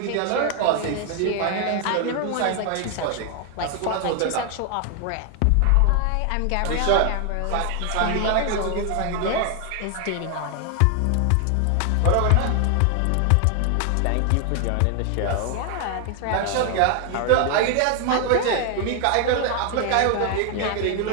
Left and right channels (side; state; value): both; different; correlation 0.00